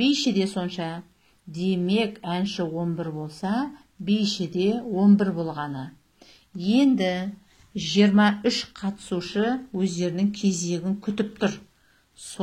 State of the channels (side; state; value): both; identical; correlation 1.00